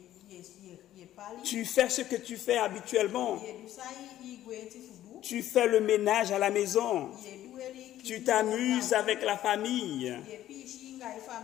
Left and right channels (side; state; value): right; quieter; 13.0 dB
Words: tu fais ce que tu fais habituellement. Tu fais le ménage à la maison. Tu t'amuses avec la famille,